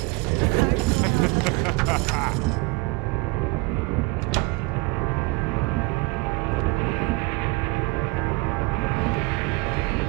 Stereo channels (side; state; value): left; quieter; 25.9 dB